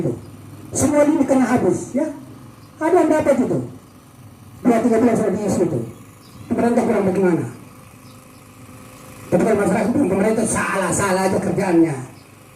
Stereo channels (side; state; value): both; identical; correlation 1.00